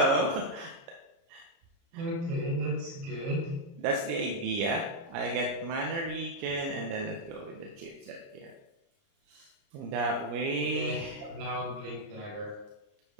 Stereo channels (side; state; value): left; late; 29 ms